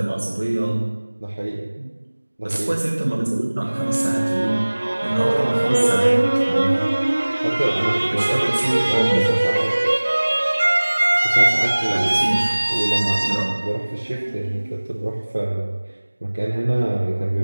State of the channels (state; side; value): inverted; both; correlation -1.00